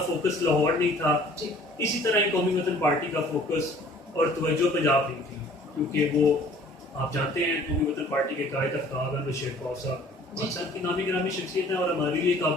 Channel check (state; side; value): normal; both; correlation 0.53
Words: لاہور نہیں تھا, اسی طرح قومی وطن پارٹی کا فوکس اور توجہ پنجاب نہیں تھی, کیونکہ وہ آپ جانتے ہیں قومی وطن پارٹی کے قائد آفتاب احمد شیر خوف صاحب پاکستان کی نامی گرامی شخصیت ہے اور ہمارے لیے